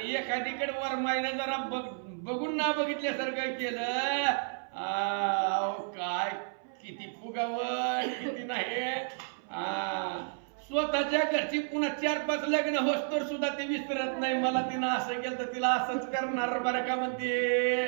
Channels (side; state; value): left; silent; 57 dB below the other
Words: एखादीकडे वरमाईनं जरा बघून ना बघितल्यासारखं केलं, काय किती फुगावं किती नाही. स्वतःच्या घरची पुन्हा 4-5 लग्न होस्तर सुद्धा ती विसरत नाही. मला तिनं असं केलं तर तिला असंच करणार बरं का म्हणते.